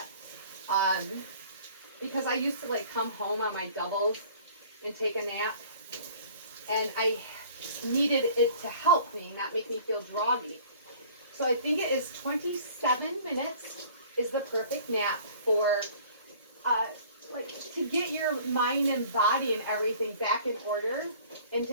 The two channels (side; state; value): both; inverted; correlation -0.50